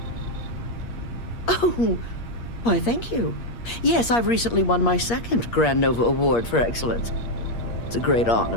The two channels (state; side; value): late; right; 8.5 ms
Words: Oh, why, thank you. Yes, I've recently won my second Grand Nova Award for excellence. It's a great